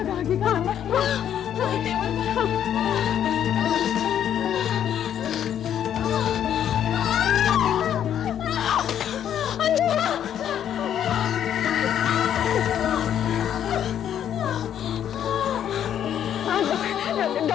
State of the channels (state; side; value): quieter; right; 9.8 dB